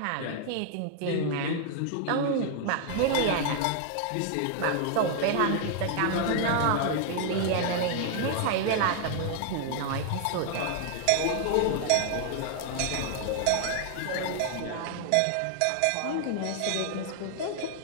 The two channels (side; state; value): both; different; correlation 0.00